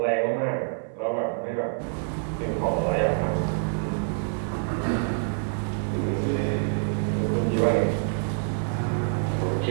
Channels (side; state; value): left; silent; digital silence